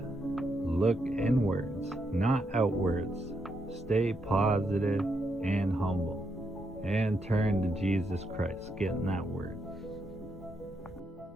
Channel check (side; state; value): both; normal; correlation 0.80